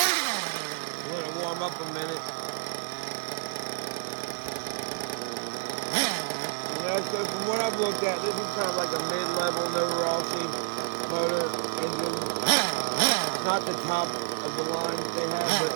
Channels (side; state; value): left; silent; digital silence